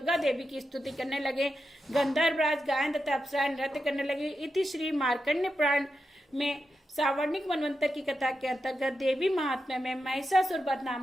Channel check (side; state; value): both; normal; correlation 0.88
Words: देवी की स्तुति करने लगे। गंधर्वराज, गायन तथा अप्सराएं नृत्य करने लगी। इति श्री मार्कंडेय पुराण में सावर्णिक मनवंतर की कथा के अंतर्गत देवी महात्म्य में महिषासुर वध